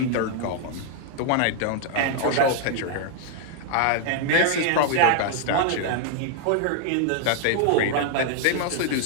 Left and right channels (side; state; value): both; different; correlation 0.00